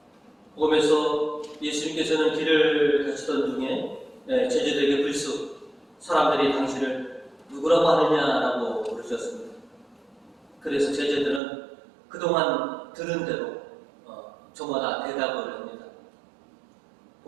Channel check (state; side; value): drops out; left; at 11.4 s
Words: 복음에서 예수님께서는 길을 가시던 중에 제자들에게 불쑥 사람들이 당신을 누구라고 하느냐라고 물으셨습니다. 그래서 제자들은 그동안 들은 대로 저마다 대답을 합니다.